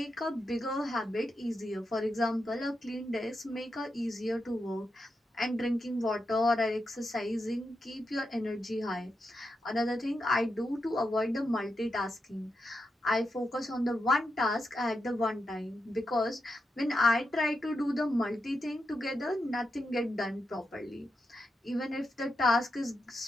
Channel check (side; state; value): both; normal; correlation 0.86